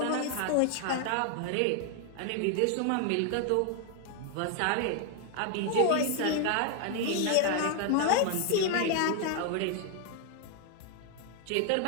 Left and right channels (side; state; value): both; different; correlation 0.00